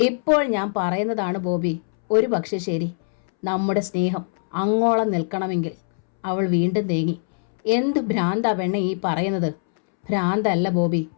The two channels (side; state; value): right; silent; 64 dB below the other